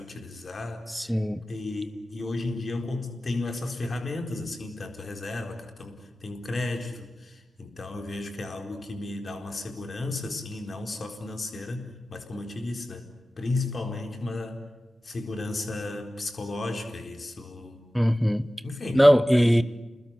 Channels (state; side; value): normal; both; correlation 0.95